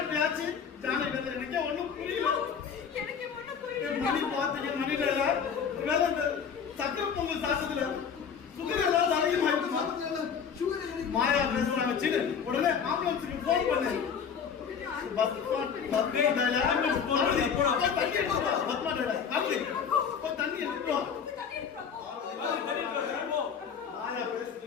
பேச்சு ஜானகி வந்து எனக்கே ஒண்ணும் புரியல. மணி பாத்தீங்க மணில வேலை இந்த சக்கரை பொங்கல் சாப்பிட்டதுல சுகர் ஏதாவது அதிகமாயிருக்குமா? மாயா பேசுறாங்க சின்ன உடனே ஆம்புலன்ஸுக்கு போன் பண்ணு. தண்ணி எடுத்துக்கோ. மாயா பேசிட்டு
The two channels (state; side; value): quieter; right; 6.9 dB